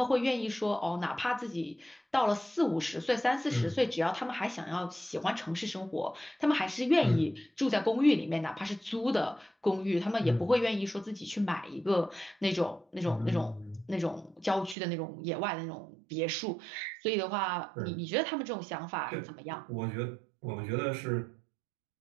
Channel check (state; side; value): drops out; left; at 14.8 s